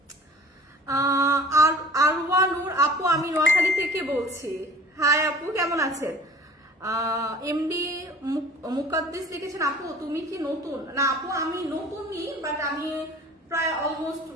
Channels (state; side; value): normal; both; correlation 0.46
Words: আরওয়ানুর আপু, আমি নোয়াখালী থেকে বলছি। হাই আপু, কেমন আছেন? এমডি মুকাদ্দিস লিখেছেন আপু তুমি কি নতুন? না আপু, আমি নতুনই, বাট আমি প্রায় অলমোস্ট